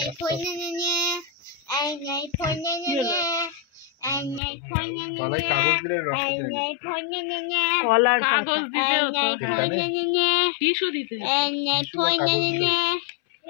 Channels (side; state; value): right; drops out; at 4.4 s